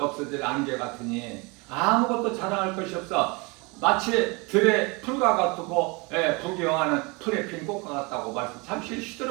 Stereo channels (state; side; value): quieter; left; 28.0 dB